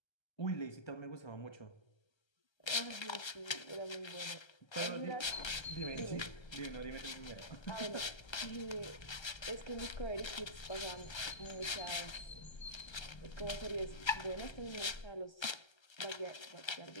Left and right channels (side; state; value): right; late; 1.3 ms